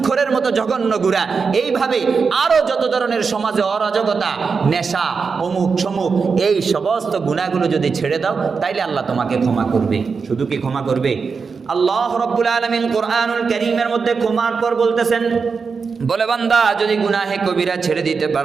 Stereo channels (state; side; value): quieter; left; 5.2 dB